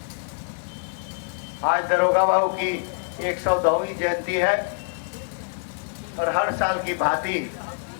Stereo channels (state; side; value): silent; right; digital silence